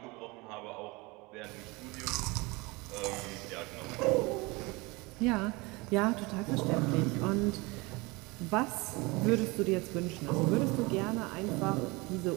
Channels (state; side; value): quieter; left; 25.0 dB